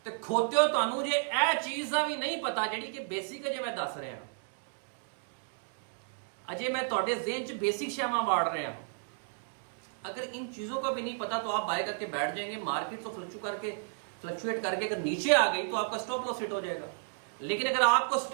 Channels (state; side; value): silent; left; digital silence